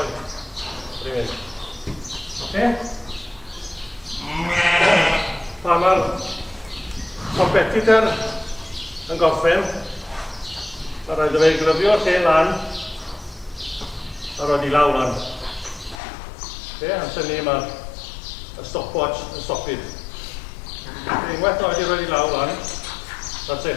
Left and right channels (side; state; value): right; drops out; at 16.0 s